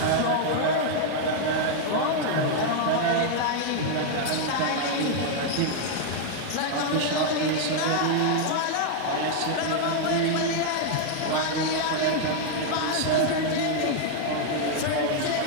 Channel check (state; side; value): different; both; correlation -0.01